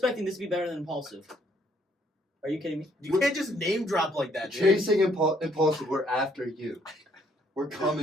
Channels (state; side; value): normal; both; correlation 0.67